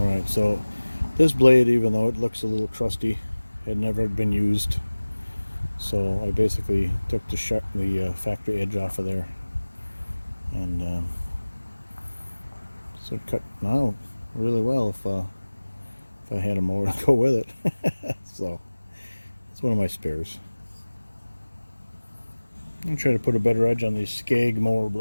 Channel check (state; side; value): inverted; both; correlation -1.00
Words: so this blade, even though it looks a little trusty, had never been used. So I basically took the factory edge off of there, and so it cut out really well if I had a mower to go with it. So it's one of my spares. I'm trying to put a better edge on these Skag mower